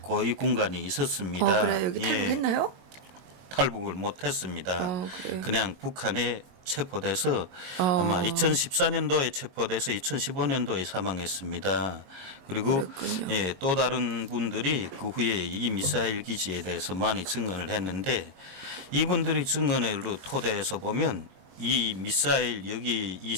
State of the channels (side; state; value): left; late; 22 ms